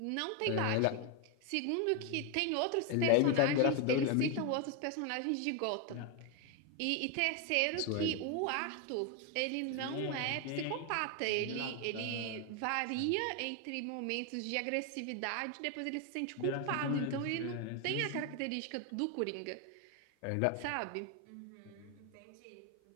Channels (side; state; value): both; different; correlation 0.01